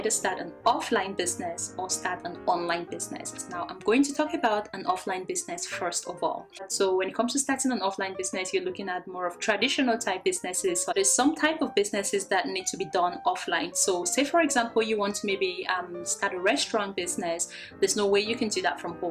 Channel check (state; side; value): identical; both; correlation 1.00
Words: start an offline business or start an online business. Now, I'm going to talk about an offline business first of all. So when it comes to starting an offline business, you're looking at more of traditional type businesses. So there's some type of businesses that need to be done offline. So say for example, you want to maybe start a restaurant business. There's no way you can do that from